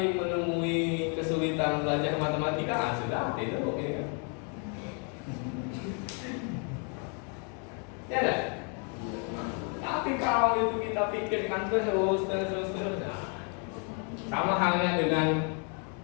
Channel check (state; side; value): quieter; right; 39.1 dB